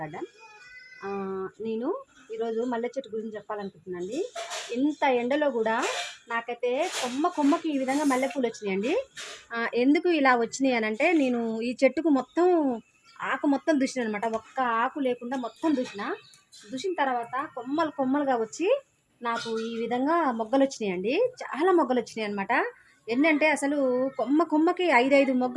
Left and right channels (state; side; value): identical; both; correlation 1.00